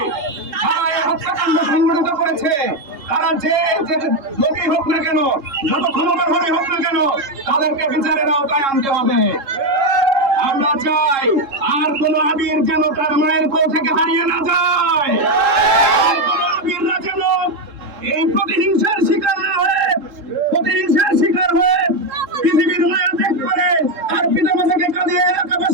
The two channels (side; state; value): left; late; 3.7 ms